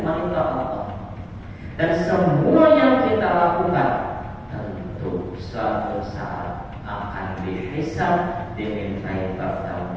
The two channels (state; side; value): identical; both; correlation 1.00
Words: monitor Allah. Dan semua yang kita lakukan tentu suatu saat akan dihisab, dimintai